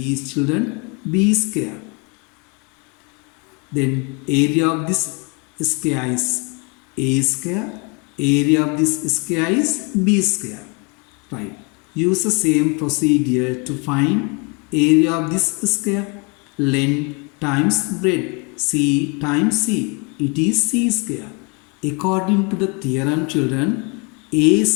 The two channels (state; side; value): quieter; right; 31.2 dB